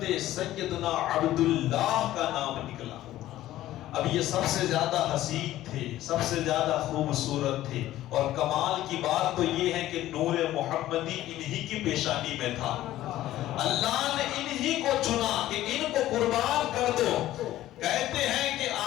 سیدنا عبداللہ کا نام نکلا۔ اب یہ سب سے زیادہ حسین تھے، سب سے زیادہ خوبصورت تھے، اور کمال کی بات تو یہ ہے کہ نور محمدی انہی کی پیشانی میں تھا۔ اللہ نے انہی کو چنا کہ ان کو قربان کر دو۔ کہتے ہیں کہ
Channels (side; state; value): right; quieter; 14.4 dB